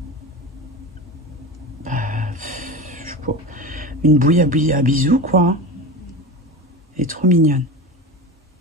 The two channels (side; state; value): both; normal; correlation 0.27